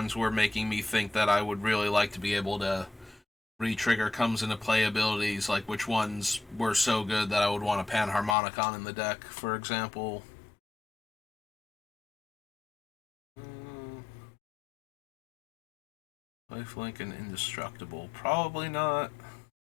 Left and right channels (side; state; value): right; drops out; at 8.3 s